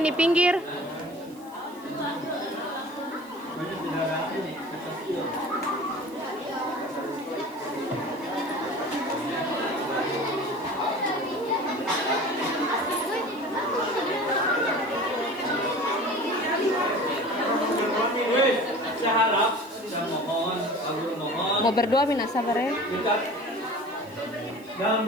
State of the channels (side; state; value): right; noise; hiss, 25 dB below the sound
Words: di pinggir. Saya harap, saya mohon, aku mohon. Mau berdoa Mina, sabar ya. Kita dalam